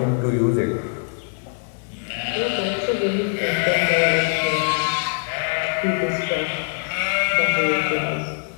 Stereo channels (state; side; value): silent; right; 57 dB below the other